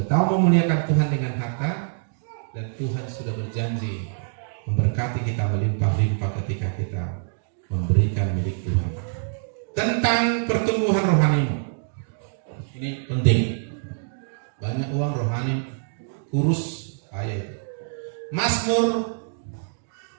tahu memuliakan Tuhan dengan harta, dan Tuhan sudah berjanji memberkati kita melimpah-limpah ketika kita memberikan milik Tuhan. Tentang pertumbuhan rohanimu, ini penting. Banyak uang rohani kurus ayat. Mazmur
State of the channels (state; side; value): silent; left; digital silence